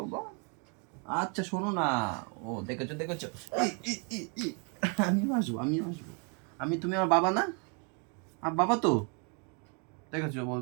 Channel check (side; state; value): left; quieter; 36.2 dB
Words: বাবা। আচ্ছা শোনো না, ও দেখেছো দেখেছো, আমিও আসবো আমিও আসবো। তুমি আমার বাবা না? আর বাবা তো, দেখেছো